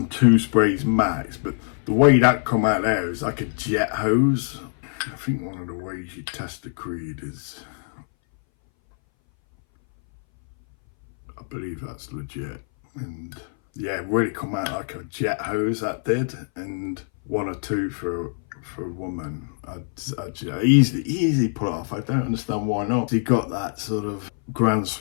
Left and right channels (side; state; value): right; silent; 60 dB below the other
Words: sprays max, but the way that come out there is like a jet hose. I think one of the ways you test the Creed is, I believe that's legit, and yeah, it really come out like a jet hose, that did. And 1 or 2 for a woman, I'd easily pull off. I don't understand why not. He got that sort of Grand